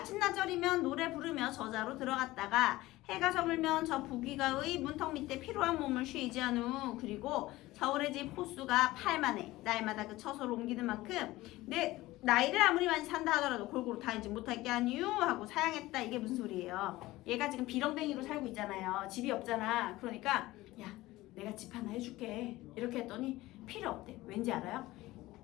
노래 부르며 저자로 들어갔다가 해가 저물면 저 부귀가의 문턱 밑에 피로한 몸을 쉬지 않우. 그리고 서울의 집 호수가 8만에 날마다 그 처소를 옮기는 만큼 내 나이를 아무리 많이 산다 하더라도 골고루 다니지 못할 게 아니유 하고 사양했다. 이게 무슨 소리예요? 얘가 지금 비렁뱅이로 살고 있잖아요. 집이 없잖아. 그러니까 야 내가 집 하나 해줄게 이렇게 했더니 필요 없대. 왠지 알아요?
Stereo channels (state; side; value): quieter; right; 18.1 dB